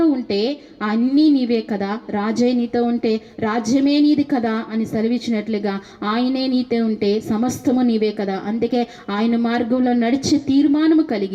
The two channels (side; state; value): both; identical; correlation 1.00